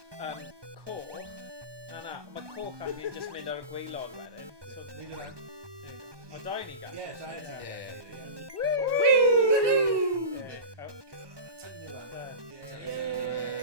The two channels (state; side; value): late; left; 1.2 ms